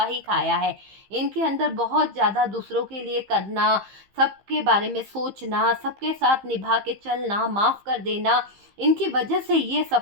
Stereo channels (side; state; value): left; late; 15 ms